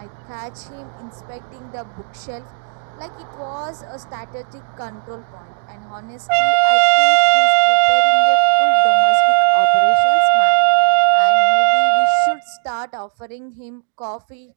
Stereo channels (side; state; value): left; silent; digital silence